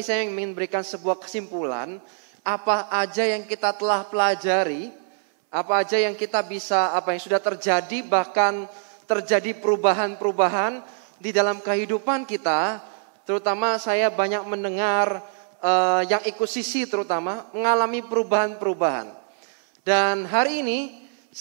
saya ingin memberikan sebuah kesimpulan apa aja yang kita telah pelajari, apa aja yang kita bisa, apa yang sudah terjadi, bahkan terjadi perubahan-perubahan di dalam kehidupan kita. Terutama saya banyak mendengar yang ikut sisi terutama mengalami perubahan-perubahan. Dan hari ini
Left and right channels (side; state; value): left; silent; 59 dB below the other